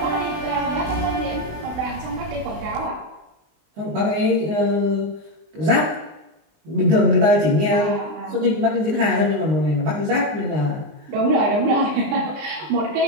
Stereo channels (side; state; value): left; late; 19 ms